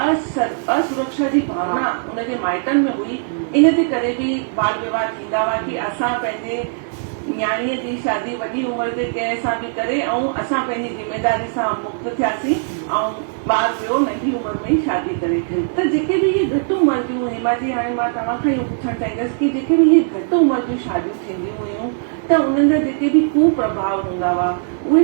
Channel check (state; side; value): silent; left; digital silence